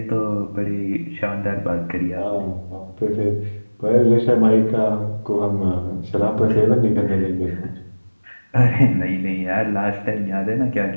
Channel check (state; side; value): inverted; both; correlation -1.00